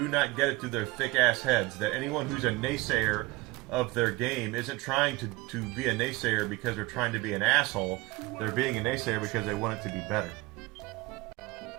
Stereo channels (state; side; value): quieter; left; 22.0 dB